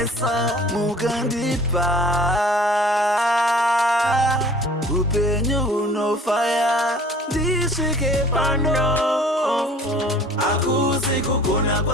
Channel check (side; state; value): both; normal; correlation 0.47